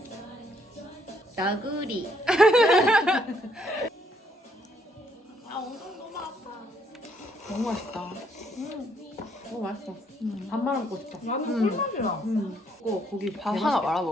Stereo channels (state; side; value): normal; both; correlation 0.69